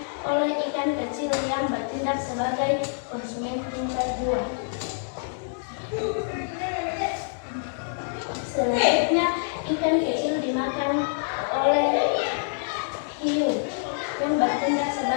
oleh ikan kecil yang bertindak sebagai konsumen tingkat 2. Selanjutnya, ikan kecil dimakan oleh hiu yang bertindak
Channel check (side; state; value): right; silent; digital silence